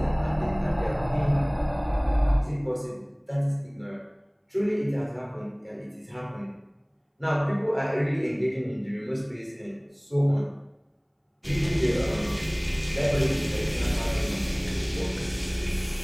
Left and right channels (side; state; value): both; identical; correlation 1.00